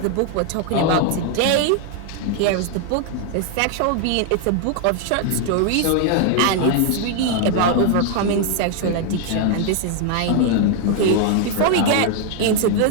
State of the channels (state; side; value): different; both; correlation 0.00